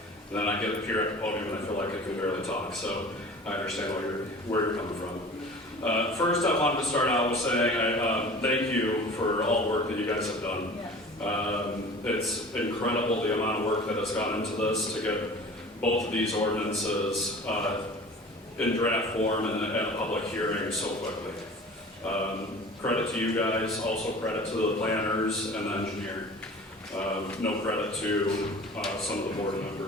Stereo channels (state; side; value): normal; both; correlation 0.41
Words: then I get up here at the podium and I feel like I can barely talk. So I understand where you're coming from. First, I wanted to start out with saying I thank you for all the work that you guys have done. It's incredible the amount of work that has gone into this to get both of these ordinances in draft form and a public hearing so quickly. Credit to you guys, also credit to the planners and the engineer. No credit to some of the board